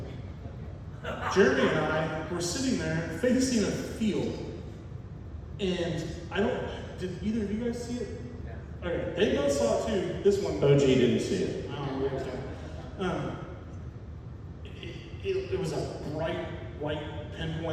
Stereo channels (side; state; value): both; identical; correlation 1.00